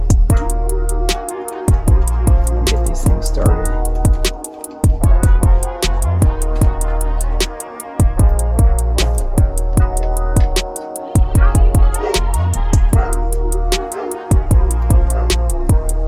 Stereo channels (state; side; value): identical; both; correlation 1.00